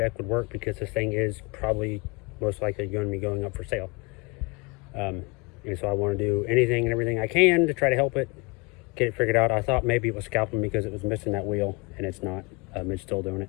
would work, because this thing is probably most likely going to be going up for sale. And so I want to do anything and everything I can to try to help it, get it figured out. I thought maybe it was scalping because it was missing that wheel, and it's not. It's still doing it.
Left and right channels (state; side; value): quieter; right; 28.3 dB